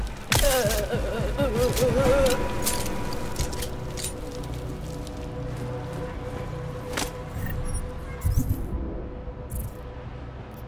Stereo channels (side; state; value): both; identical; correlation 1.00